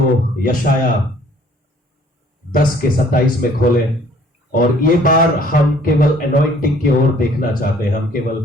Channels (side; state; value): both; normal; correlation 0.57